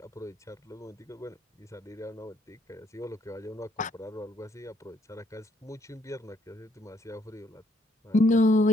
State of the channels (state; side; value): normal; both; correlation 0.70